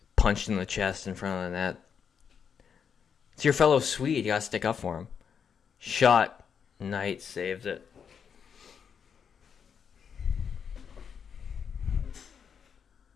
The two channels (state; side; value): quieter; right; 7.0 dB